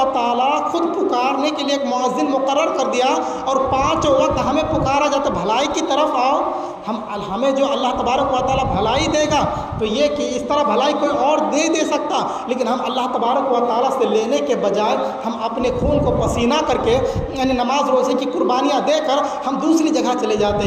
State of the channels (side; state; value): both; identical; correlation 1.00